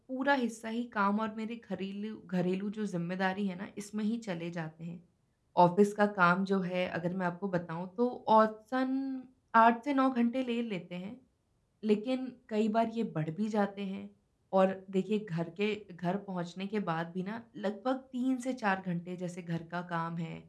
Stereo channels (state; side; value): identical; both; correlation 1.00